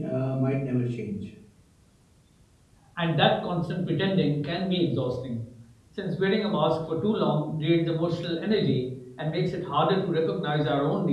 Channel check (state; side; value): identical; both; correlation 1.00